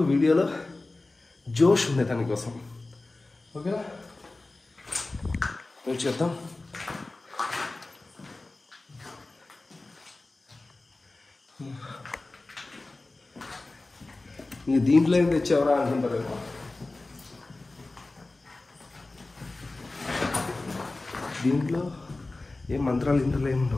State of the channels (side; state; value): right; quieter; 3.1 dB